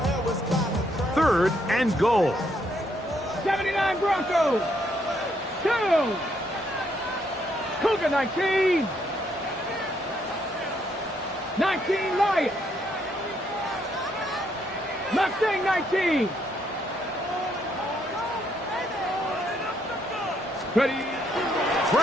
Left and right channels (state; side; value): normal; both; correlation 0.73